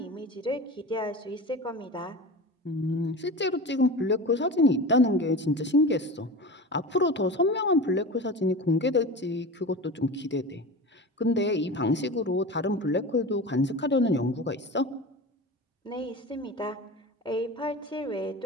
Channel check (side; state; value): both; normal; correlation 0.30